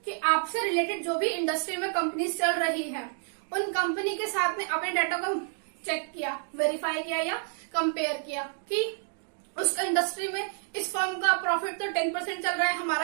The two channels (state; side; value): silent; left; 58 dB below the other